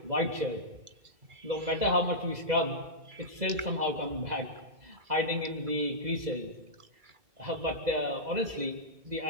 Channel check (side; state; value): left; late; 2.0 ms